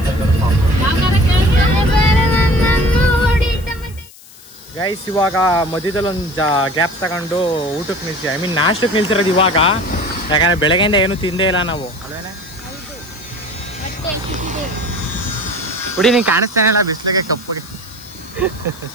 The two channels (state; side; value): noise; left; hiss, 22 dB below the sound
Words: ಗೈಸ್ ಇವಾಗ ಮಧ್ಯದಲ್ಲಿ ಒಂದು ಗ್ಯಾಪ್ ತಗೊಂಡು ಊಟಕ್ಕೆ ನಿಲ್ಸಿ, ನಾಷ್ಟಕ್ಕೆ ನಿಲ್ಸಿರೋದು ಇವಾಗ. ಯಾಕಂದ್ರೆ ಬೆಳಗ್ಗೆಯಿಂದ ಏನು ತಿಂದೇ ಇಲ್ಲ ನಾವು, ಅಲ್ವೇನೆ? ಹುಡಿ ನೀನು ಕಾಣಿಸ್ತಾನೆ ಇಲ್ಲ ಬಿಸಿಲಿಗೆ ಕಪ್ಪಗೆ.